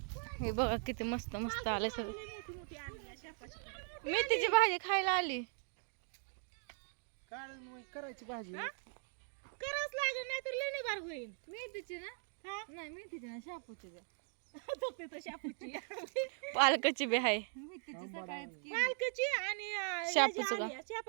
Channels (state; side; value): silent; left; 51 dB below the other